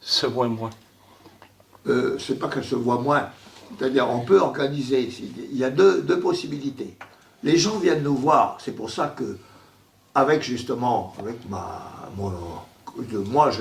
se voit moins? C'est pas qu'elle se voit moins. C'est-à-dire, on peut organiser. Il y a deux possibilités. Les gens viennent nous voir. C'est pour ça que, avec moi,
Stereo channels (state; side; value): identical; both; correlation 1.00